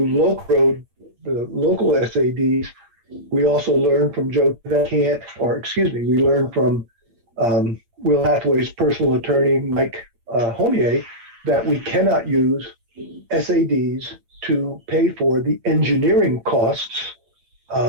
the local SADs, we also learned from we learned from Will Hathaway's personal attorney, Mike Homier, that we cannot use SADs to pay for the engineering costs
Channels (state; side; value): late; left; 8.8 ms